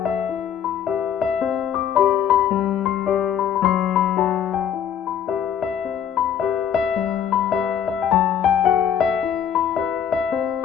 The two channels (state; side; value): quieter; right; 8.9 dB